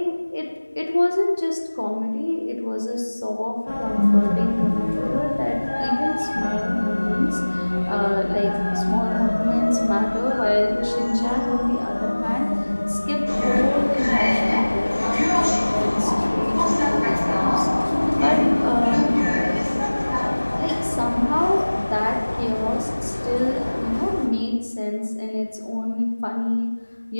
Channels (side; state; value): both; inverted; correlation -1.00